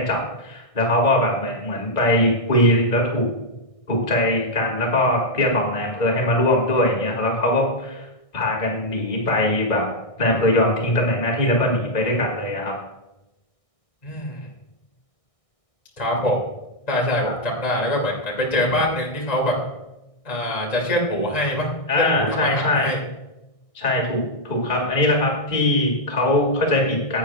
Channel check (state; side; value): late; right; 1.6 ms